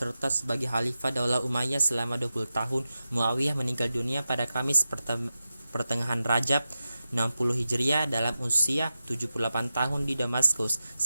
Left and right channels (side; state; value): both; inverted; correlation -0.92